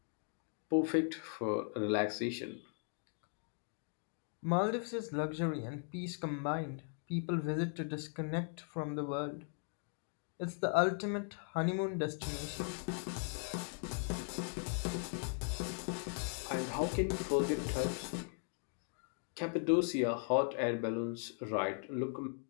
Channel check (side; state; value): right; silent; 52 dB below the other